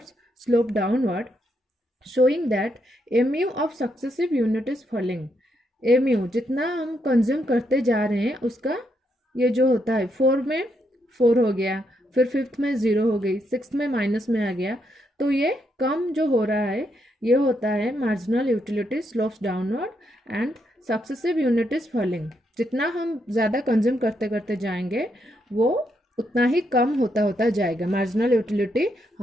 slope downward, showing that MU of successive unit is falling. MU जितना हम consume करते जा रहे हैं उसका ये जो होता है, 4 में 4 हो गया, फिर 5th में 0 हो गई, 6th में माइनस में आ गया, तो ये कम जो हो रहा है ये होता है marginal utility slopes downward and successive unit is falling. जितना हम ज़्यादा कंज्यूम करते करते जाएंगे वो उतना ही कम होता होता जाएगा, मार्जिनल यूटिलिटी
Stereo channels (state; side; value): normal; both; correlation 0.78